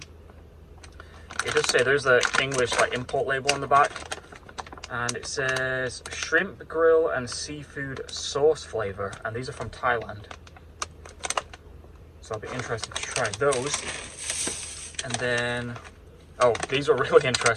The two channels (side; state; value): both; identical; correlation 1.00